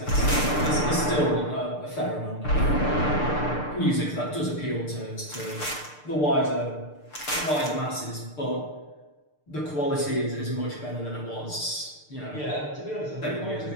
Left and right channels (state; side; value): late; right; 6.7 ms